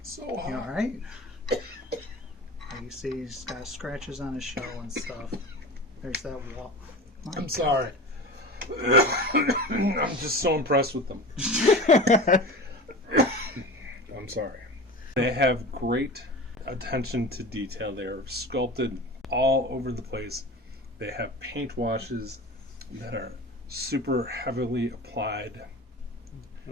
So You all right? You see he's got scratches on his shell and stuff. There's that wall. I'm sorry. I'm just so impressed with them. I'm sorry. They have great attention to detail. They're sculpted all over the place. They have paint washes that are super heavily applied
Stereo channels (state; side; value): normal; both; correlation 0.32